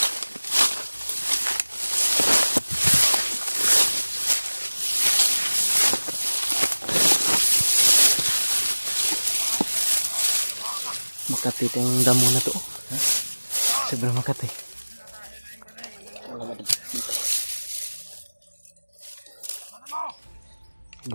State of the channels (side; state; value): both; inverted; correlation -1.00